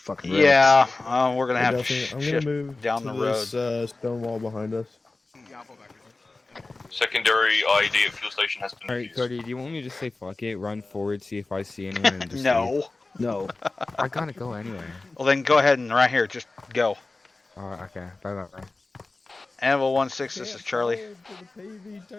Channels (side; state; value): right; quieter; 3.3 dB